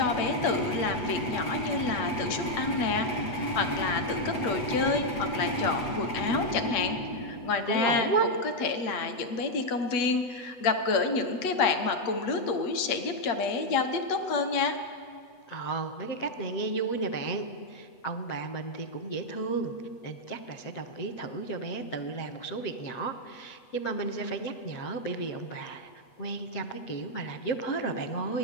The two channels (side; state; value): right; late; 8.1 ms